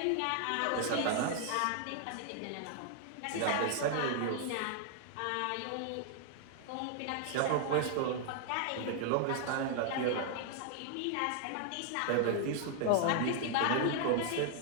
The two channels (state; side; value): different; both; correlation 0.00